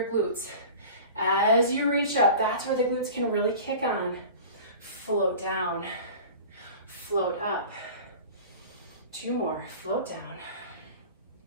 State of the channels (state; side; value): inverted; both; correlation -0.39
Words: glutes. As you reach up, that's where the glutes can really kick on. Float down, float up. 2 more, float down,